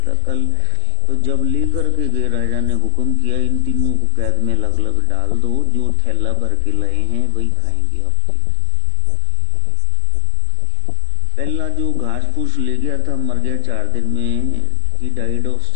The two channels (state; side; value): different; both; correlation 0.00